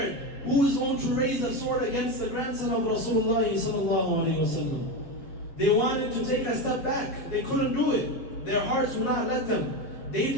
Who is going to raise a sword against the grandson of Rasulullah sallallahu alayhi wasallam? They wanted to take a step back. They couldn't do it. Their hearts would not let them. They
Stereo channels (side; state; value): right; late; 7.2 ms